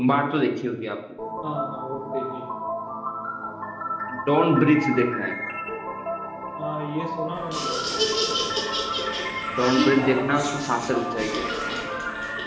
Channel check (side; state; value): both; identical; correlation 1.00